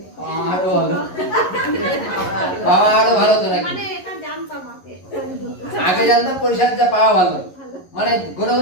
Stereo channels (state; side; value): late; right; 11 ms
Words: পাওয়া আরো ভালো তো নাকি? আগে জানতাম পরিচর্যা পাওয়া ভালো, মানে কোনো